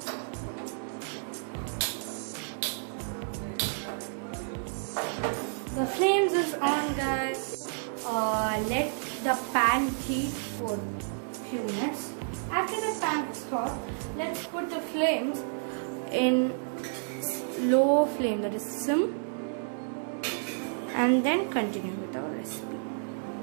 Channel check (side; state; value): left; silent; 57 dB below the other